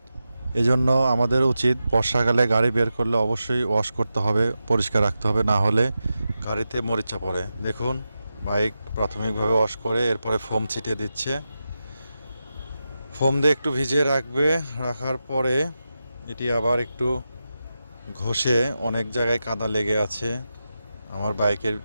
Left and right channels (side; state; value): both; inverted; correlation -0.90